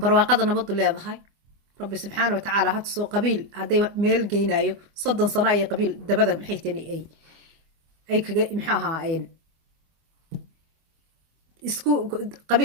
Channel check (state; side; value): late; left; 25 ms